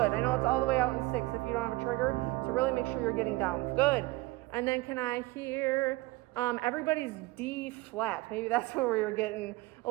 I know it's all the way out in 6 if you don't have a trigger, so really make sure you're getting down. Good. And then can I hear everybody's D flat? Maybe that's where we were getting a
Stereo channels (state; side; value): quieter; left; 20.8 dB